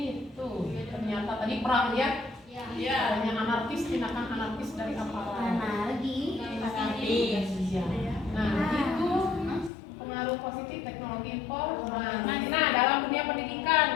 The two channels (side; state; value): right; drops out; at 9.7 s